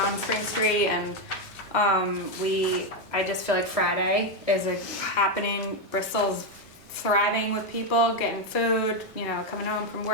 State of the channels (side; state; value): both; normal; correlation 0.05